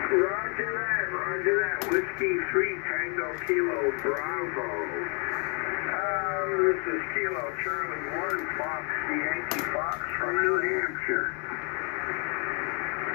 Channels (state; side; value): quieter; right; 36.5 dB